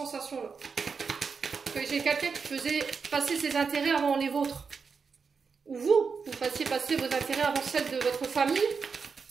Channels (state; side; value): quieter; left; 5.4 dB